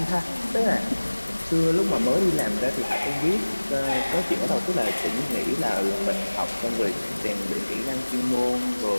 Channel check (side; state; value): both; inverted; correlation -1.00